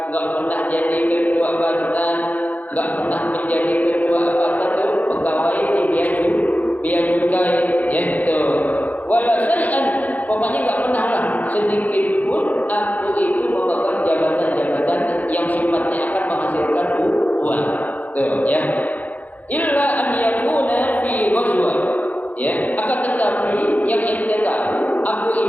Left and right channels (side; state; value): right; late; 0.078 ms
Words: nggak pernah jadi ketua badan, nggak pernah menjadi ketua apa tuh pegawai di bea cukai, yaitu wala syai'an, pokoknya nggak pernah lah sedikit pun aku itu memegang jabatan-jabatan yang sifatnya akan menghasilkan uang, tuh ya. Illa an yakuna fi ghazwa, ya, akan tetapi yang ente tahu, aku